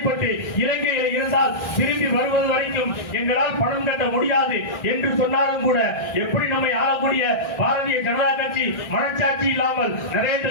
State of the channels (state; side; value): late; right; 1.6 ms